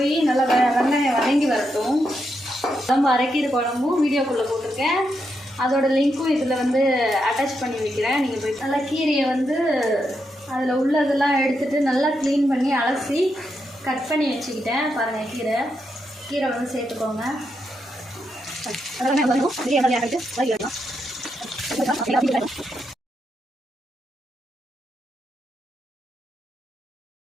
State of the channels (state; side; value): normal; both; correlation 0.83